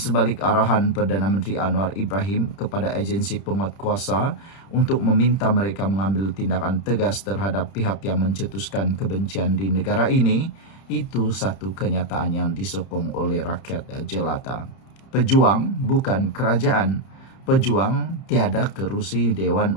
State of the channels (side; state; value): right; late; 31 ms